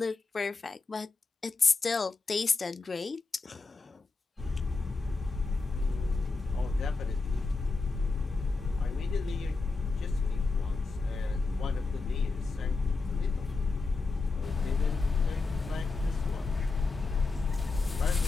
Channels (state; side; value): quieter; right; 3.9 dB